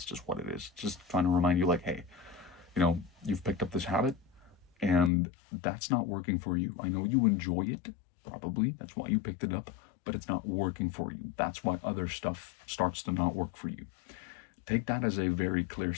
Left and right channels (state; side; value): drops out; right; at 5.1 s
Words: just what it is. Just trying to remind you like, hey, you've picked up this habit and that's not working for you. I know you enjoy it, probably. That's why you picked it up, but it's not working for you. That's why other stuff starts to not work for you. Take that as a very clear